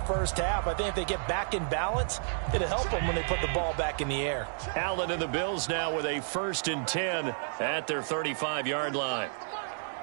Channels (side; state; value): left; silent; digital silence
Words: first half. I think if they get back in balance, it'll help them when they put the ball back in the air. Allen and the Bills now with a 1st and 10 at their 35-yard line.